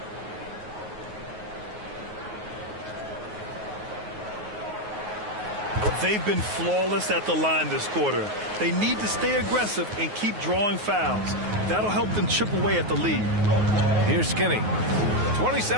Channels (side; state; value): left; late; 9.4 ms